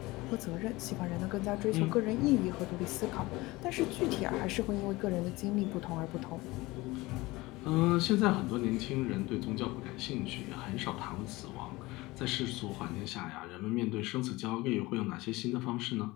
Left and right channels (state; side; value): quieter; right; 21.0 dB